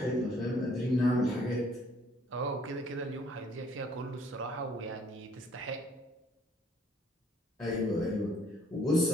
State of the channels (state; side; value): normal; both; correlation 0.62